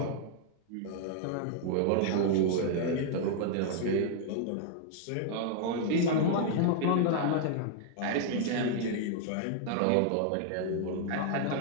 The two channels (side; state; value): both; different; correlation 0.00